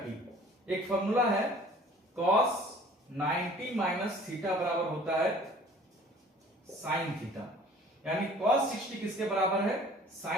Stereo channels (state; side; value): normal; both; correlation 0.50